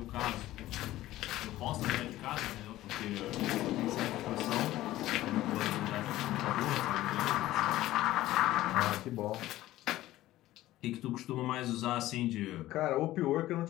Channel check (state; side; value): quieter; right; 15.5 dB